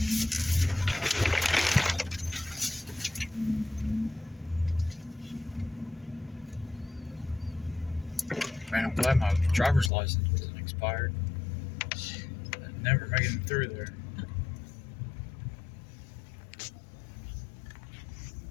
Man, I'm glad my driver's license isn't expired. I'd never making it through there.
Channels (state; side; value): drops out; right; at 9.9 s